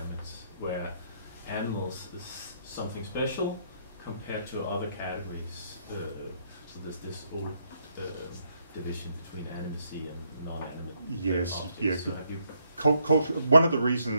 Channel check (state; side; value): inverted; both; correlation -0.73